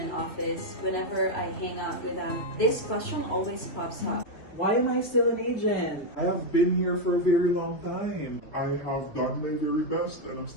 office, whenever I hang out with them, this question always pops up. Why am I still an agent? I have been here for a very long time. I have done my very best and I'm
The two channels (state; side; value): late; right; 3.0 ms